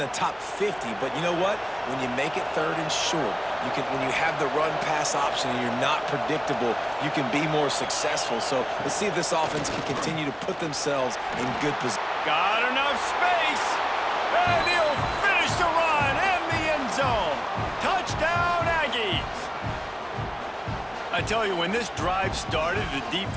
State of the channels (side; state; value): both; identical; correlation 1.00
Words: top 50. But you know what? When you make it third and short, when you have the run-pass option and you're not predictable, you can be more successful. So let's see if this offense can continue to put themselves in good position. Got enough space, and he'll finish the run in the end zone. Touchdown, Aggies! I tell you, when this drive started, the